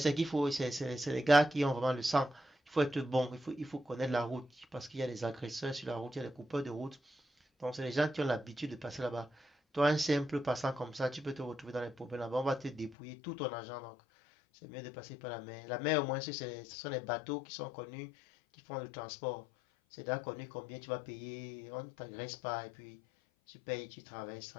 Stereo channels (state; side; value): drops out; right; at 13.0 s